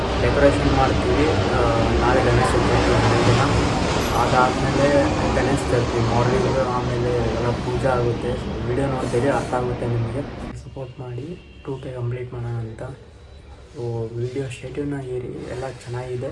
ಡೆಕೋರೇಷನ್ ಮಾಡ್ತೀವಿ. ನಾಳೆ ಗಣೇಶ ಚತುರ್ಥಿ ದಿನ, ಅದಾದಮೇಲೆ ಗಣೇಶ ಚತುರ್ಥಿ ಮಾರ್ನಿಂಗ್, ಆಮೇಲೆ ಎಲ್ಲ ಪೂಜೆ ಆಗುತ್ತೆ. ವೀಡಿಯೋ ನೋಡ್ತೀವಿ, ಅರ್ಥ ಆಗುತ್ತೆ ನಿಮಗೆ. ಸಪೋರ್ಟ್ ಮಾಡಿ 2K ಕಂಪ್ಲೀಟ್ ಮಾಡೋಣ ಅಂತ. ವೀಡಿಯೋ ಶೆಡ್ಯೂಲ್ನ ಏರಿ ಎಲ್ಲ ಚೆನ್ನಾಗಿದೆ.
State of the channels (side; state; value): both; identical; correlation 1.00